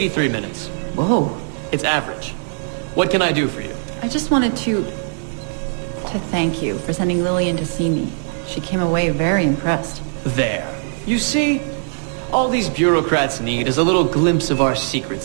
minutes. Whoa. It's average. What can I do for you? I just wanted to thank you for sending Lillian to see me. She came away very impressed. There. You see? All these bureaucrats need is a little glimpse of our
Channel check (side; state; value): left; silent; digital silence